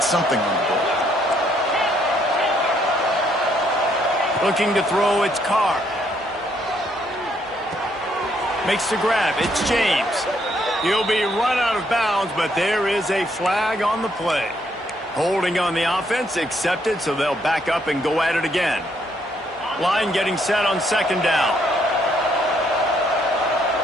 something on the board. Looking to throw, it's Carr. Makes the grab, it's James. He'll be run out of bounds, but there is a flag on the play. Holding on the offense, accepted, so they'll back up and go at it again. Line getting set on second down.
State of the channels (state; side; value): normal; both; correlation 0.71